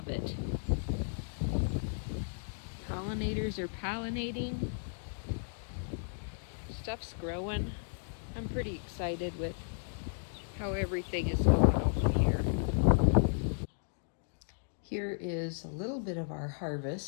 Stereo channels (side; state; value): right; silent; digital silence